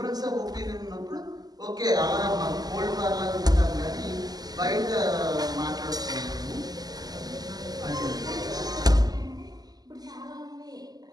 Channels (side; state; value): left; late; 0.19 ms